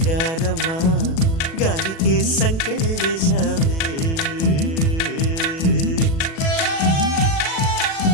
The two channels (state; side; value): late; right; 37 ms